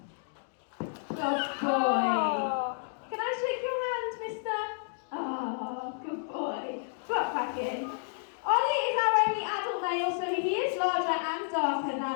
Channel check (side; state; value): right; silent; digital silence